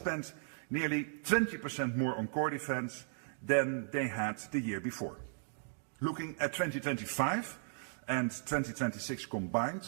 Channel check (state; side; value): silent; left; digital silence